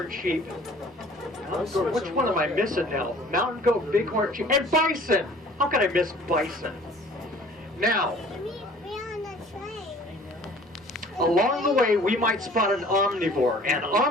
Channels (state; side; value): normal; both; correlation 0.50